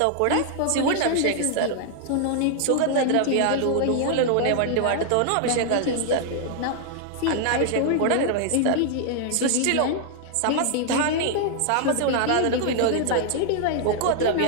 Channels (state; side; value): different; both; correlation 0.00